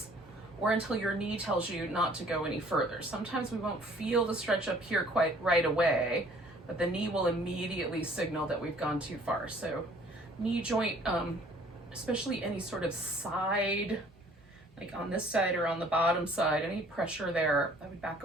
or until your knee tells you not to go any further. Sometimes we won't feel the stretch up here quite right away, but the knee will immediately signal that we've gone too far. So knee joint, especially any sort of side, like on this side or on the bottom side, any pressure there, I would back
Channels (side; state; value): both; normal; correlation 0.56